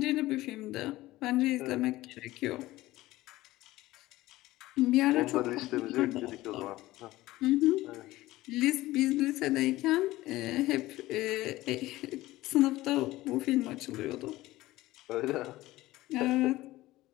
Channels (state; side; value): quieter; right; 17.4 dB